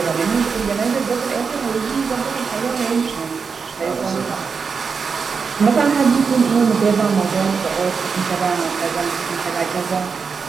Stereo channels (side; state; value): left; quieter; 5.5 dB